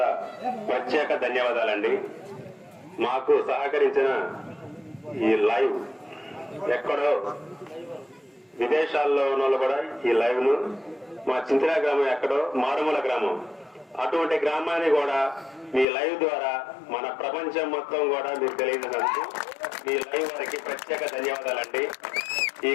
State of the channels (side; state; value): right; drops out; at 15.9 s